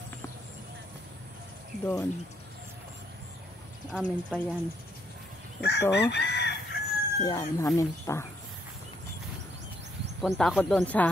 doon. Amin pa yan. Ito. Yan, amin pa. Punta ako doon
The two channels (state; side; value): normal; both; correlation 0.72